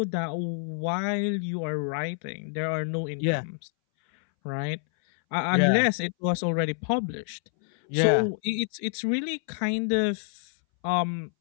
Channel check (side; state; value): right; silent; 60 dB below the other